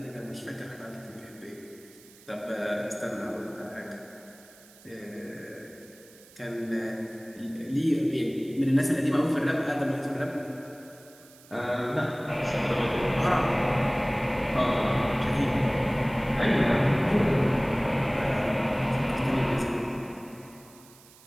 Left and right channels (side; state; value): right; noise; hiss, 24 dB below the sound